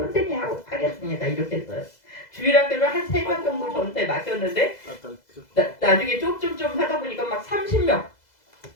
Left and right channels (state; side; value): late; right; 2.0 ms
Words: 하겠습니다 이렇게 했어요. 주일학교를 한 3명 정도 저한테 맡겼는데 나중에 좀 하다 보니까 막 30명